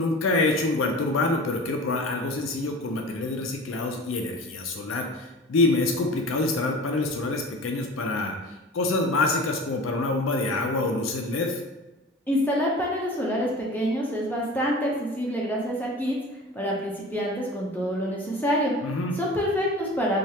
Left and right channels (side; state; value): both; normal; correlation 0.37